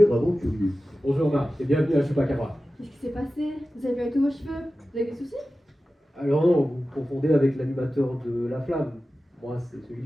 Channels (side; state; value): both; normal; correlation 0.95